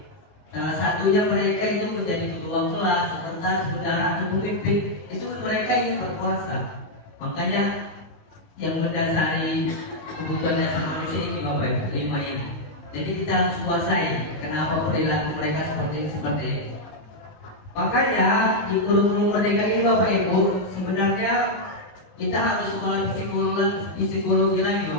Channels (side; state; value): right; late; 19 ms